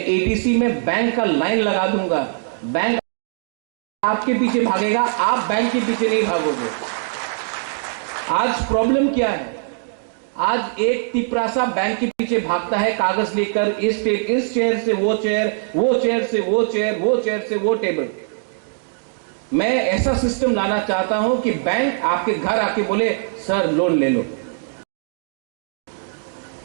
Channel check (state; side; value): silent; left; digital silence